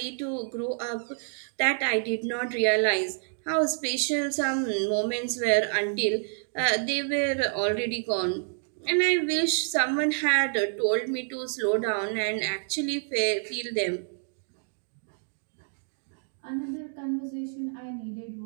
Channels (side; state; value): left; silent; digital silence